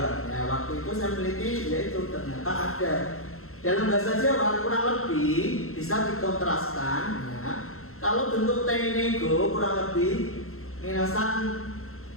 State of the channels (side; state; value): right; late; 0.62 ms